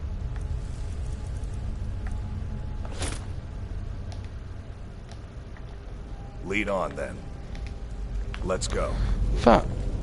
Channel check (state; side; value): identical; both; correlation 1.00